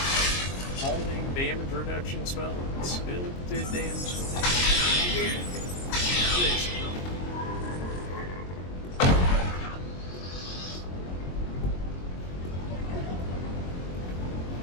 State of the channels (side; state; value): right; late; 22 ms